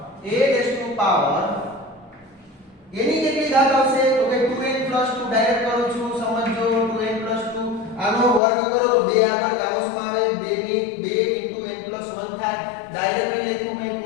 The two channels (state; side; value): drops out; right; at 8.4 s